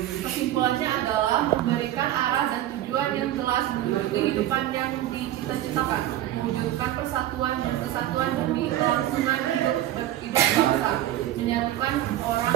depan yang dicita-citakan, mewujudkan persatuan dan kesatuan demi kelangsungan hidup bangsa, menyatukan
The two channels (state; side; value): quieter; left; 13.3 dB